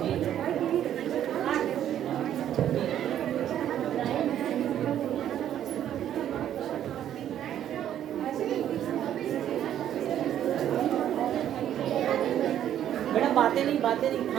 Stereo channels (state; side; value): quieter; left; 10.8 dB